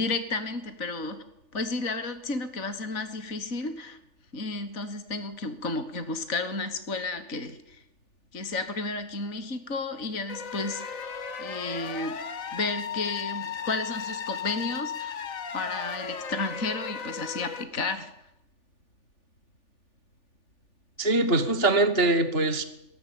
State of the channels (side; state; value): right; late; 3.4 ms